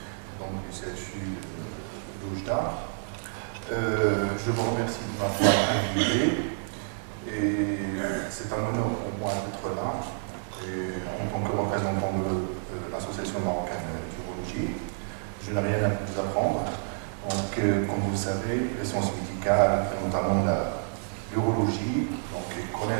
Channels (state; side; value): silent; left; 59 dB below the other